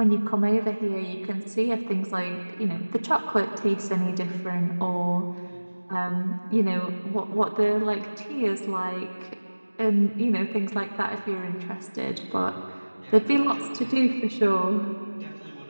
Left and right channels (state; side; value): inverted; both; correlation -1.00